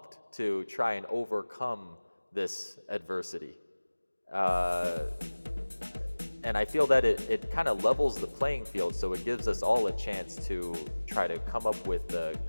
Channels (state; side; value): inverted; both; correlation -1.00